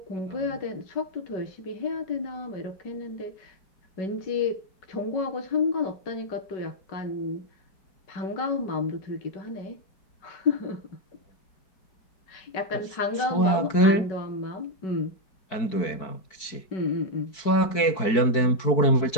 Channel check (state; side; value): late; right; 4.6 ms